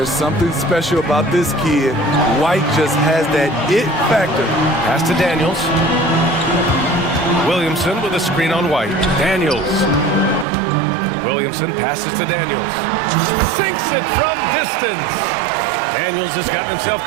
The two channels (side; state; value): left; drops out; at 10.5 s